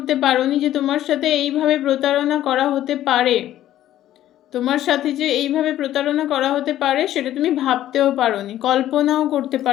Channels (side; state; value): right; quieter; 12.8 dB